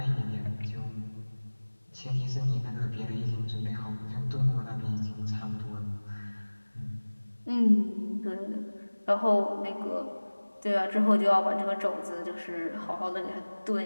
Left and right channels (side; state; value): both; inverted; correlation -1.00